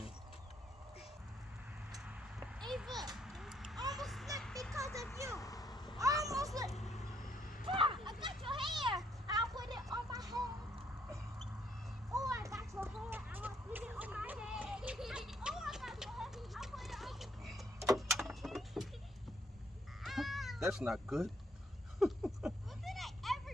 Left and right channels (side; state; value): both; normal; correlation 0.70